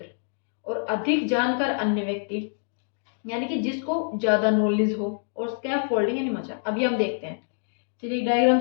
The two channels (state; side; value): silent; right; digital silence